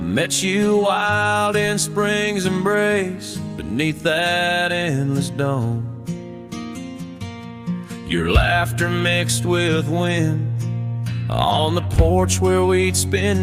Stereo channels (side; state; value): both; identical; correlation 1.00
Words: you wild in spring's embrace, beneath that endless dome. Your laughter mixed with wind, on the porch where we'd